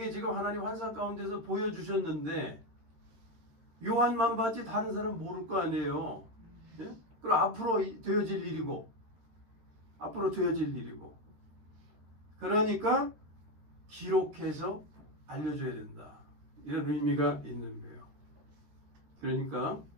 지금 하나님 환상 가운데서 보여주셨는데 요한만 봤지 다른 사람은 모를 거 아니에요. 예? 그럼 앞으로 되어질 일이고 그러니까 기록해서 알려줘야 된다. 이런 의미가 있는 거예요. 그러니까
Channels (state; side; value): late; left; 13 ms